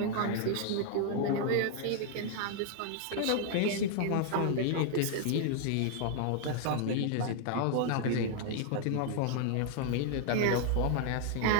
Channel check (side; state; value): both; different; correlation 0.00